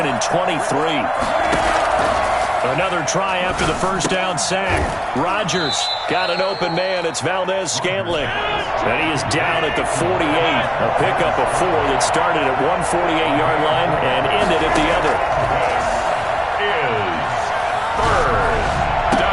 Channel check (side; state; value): both; identical; correlation 1.00